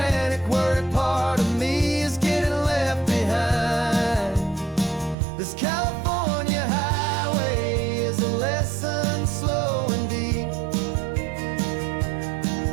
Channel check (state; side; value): drops out; left; at 5.2 s